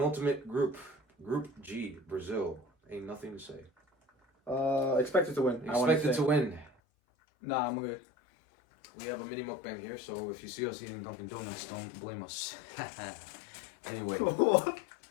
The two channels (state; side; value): drops out; right; at 6.7 s